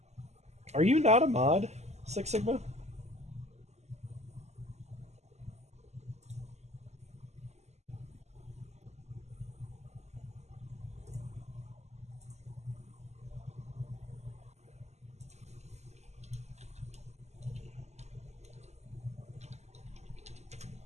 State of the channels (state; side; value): late; left; 0.33 ms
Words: Are you not a mod, Six Sigma?